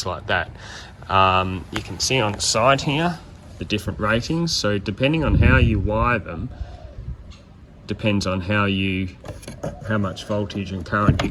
like that. You can see on the side here, the different ratings. So depending on how you wire them, depends on how much voltage and current you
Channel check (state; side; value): identical; both; correlation 1.00